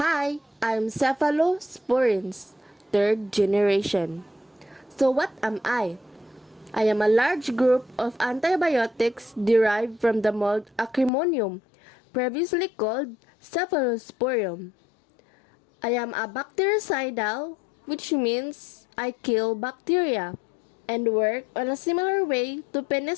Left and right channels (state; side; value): drops out; right; at 11.1 s